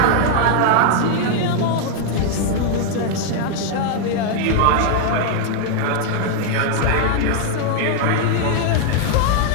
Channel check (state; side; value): different; both; correlation 0.00